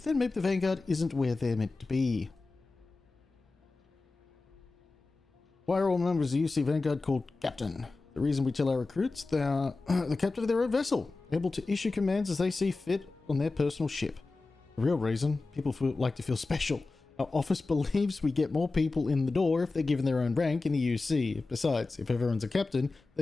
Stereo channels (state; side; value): quieter; right; 3.6 dB